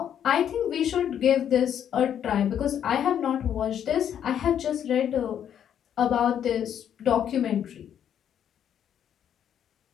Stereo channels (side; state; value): right; quieter; 9.4 dB